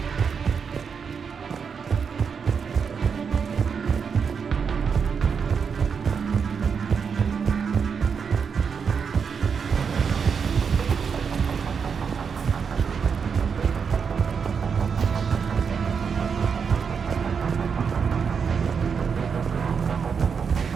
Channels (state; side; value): quieter; left; 6.2 dB